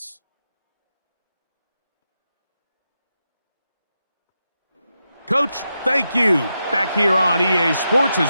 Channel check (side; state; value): both; inverted; correlation -0.87